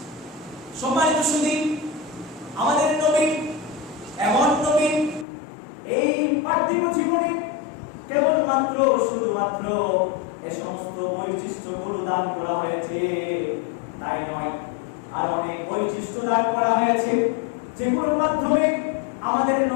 সম্মানিত সুধী, আমাদের নবী এমন নবী, এই পার্থিব জীবনে কেবলমাত্র শুধুমাত্র এই সমস্ত বৈশিষ্ট্যগুলো দান করা হয়েছে তাই নয়, আর অনেক বৈশিষ্ট্য দান করা হয়েছে যেগুলোর মাধ্যমে আমাদের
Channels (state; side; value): drops out; right; at 5.2 s